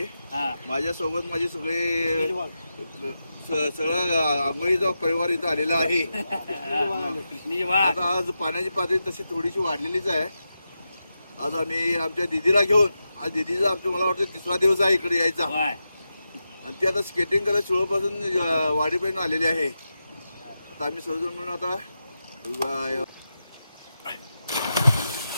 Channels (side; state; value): both; inverted; correlation -0.89